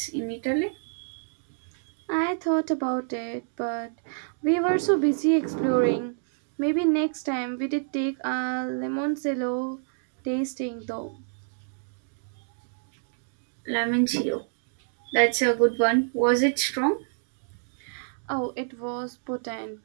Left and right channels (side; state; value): left; silent; digital silence